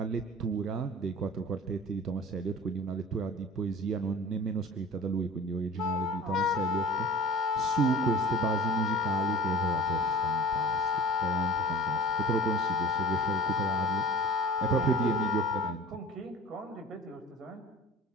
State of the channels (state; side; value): normal; both; correlation 0.40